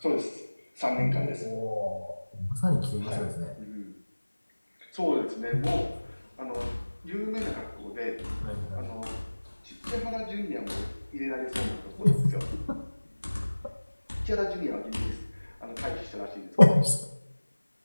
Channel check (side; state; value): both; inverted; correlation -1.00